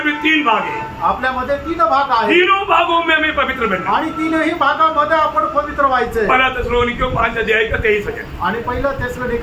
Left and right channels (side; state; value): both; identical; correlation 1.00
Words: भी 3 भाग है. आपल्यामध्ये 3 भाग आहेत. तीनों भागों में हमें पवित्र बनना. आणि 3ही भागामध्ये आपण पवित्र व्हायचंय. पहला थिस्सलुनीकियों 5 अध्याय का 23 वचन, आणि पहिलं